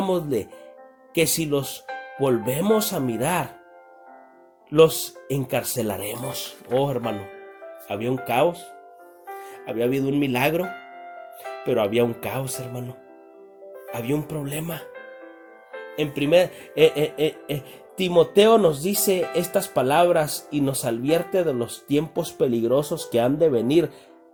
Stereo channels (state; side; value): identical; both; correlation 1.00